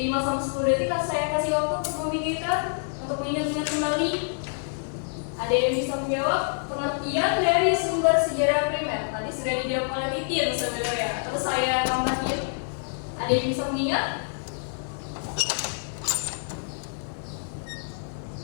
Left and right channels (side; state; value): right; silent; digital silence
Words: sampai 10 detik saya kasih waktu untuk memikirkan, untuk mengingat-ingat kembali. Ada yang bisa menjawab pengertian dari sumber sejarah primer? Tadi sudah dijawab oleh Titin sebenarnya. Terus saya tambahin. Ada yang bisa mengingat?